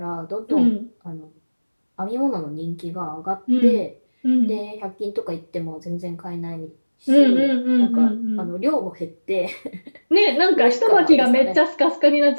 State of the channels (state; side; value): inverted; both; correlation -1.00